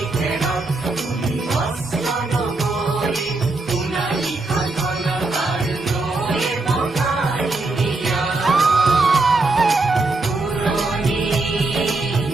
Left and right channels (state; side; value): quieter; left; 3.2 dB